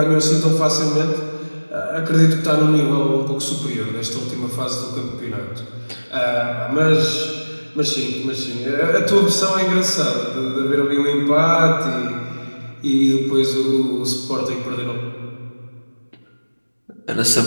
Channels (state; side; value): inverted; both; correlation -1.00